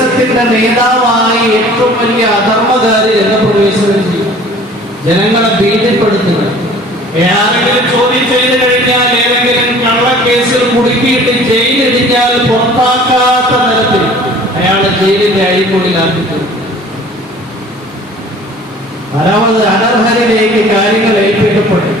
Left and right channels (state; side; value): normal; both; correlation 0.48